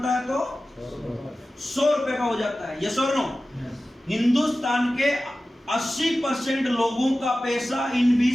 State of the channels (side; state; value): both; normal; correlation 0.95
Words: है तो 100 रुपए का हो जाता है। ये सो हिंदुस्तान के 80% लोगों का पैसा इन